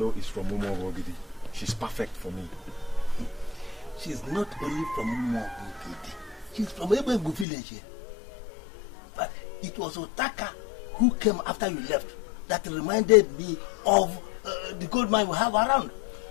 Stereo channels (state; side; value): drops out; right; at 7.5 s